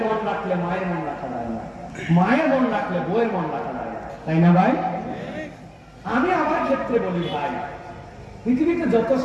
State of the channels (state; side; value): identical; both; correlation 1.00